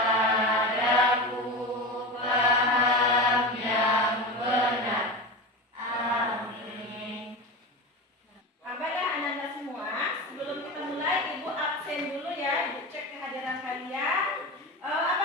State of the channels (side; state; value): both; normal; correlation 0.24